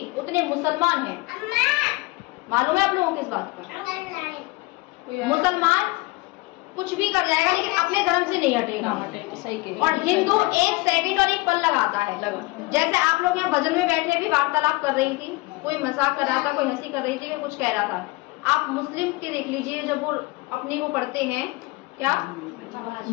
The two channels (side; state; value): right; quieter; 22.6 dB